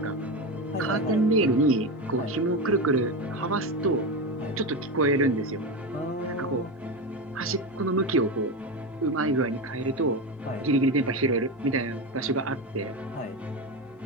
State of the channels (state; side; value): normal; both; correlation 0.18